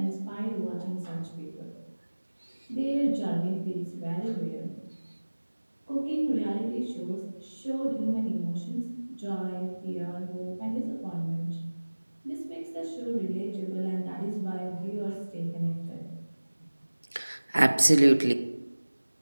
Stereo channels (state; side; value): inverted; both; correlation -1.00